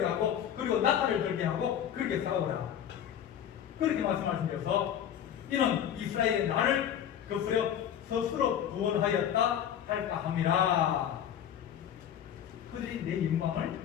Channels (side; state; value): right; quieter; 9.6 dB